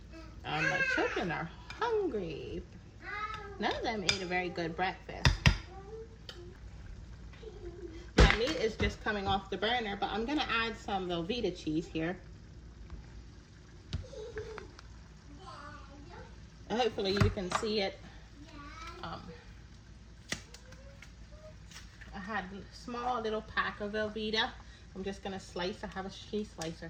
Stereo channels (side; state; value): both; identical; correlation 1.00